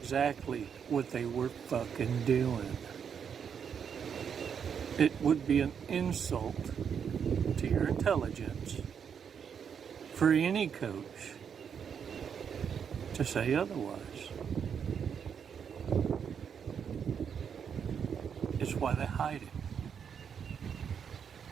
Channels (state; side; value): quieter; left; 7.3 dB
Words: what they were fucking doing. It would be an insult to your intelligence for any coach to say otherwise. It's why they hide it.